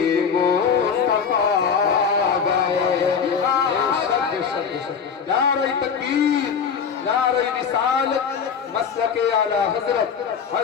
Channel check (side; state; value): right; quieter; 6.6 dB